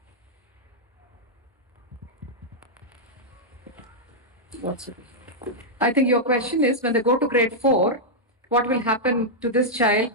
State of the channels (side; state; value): both; normal; correlation -0.06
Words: I think your question is when they go to grade 4, what will happen to this child